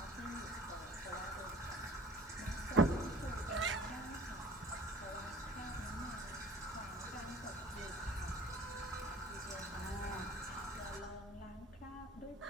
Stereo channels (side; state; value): both; normal; correlation 0.49